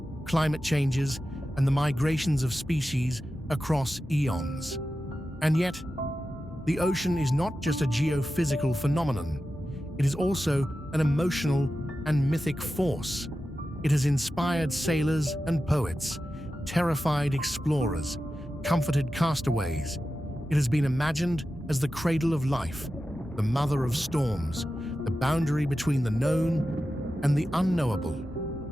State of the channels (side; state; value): both; normal; correlation 0.92